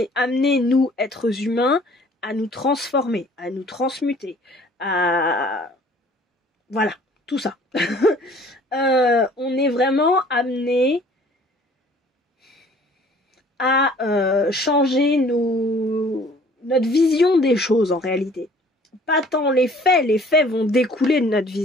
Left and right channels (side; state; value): both; normal; correlation 0.54